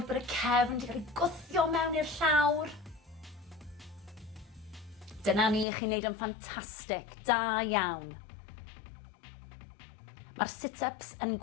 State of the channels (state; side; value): drops out; right; at 5.7 s